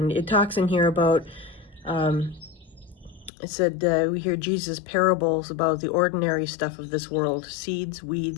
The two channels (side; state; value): right; drops out; at 3.3 s